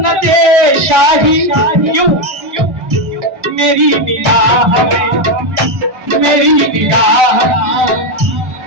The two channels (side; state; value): left; late; 1.4 ms